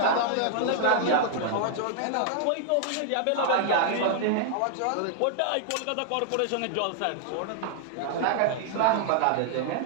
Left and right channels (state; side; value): different; both; correlation 0.00